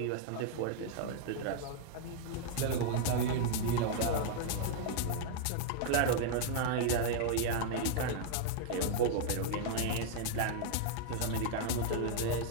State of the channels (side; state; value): both; different; correlation -0.01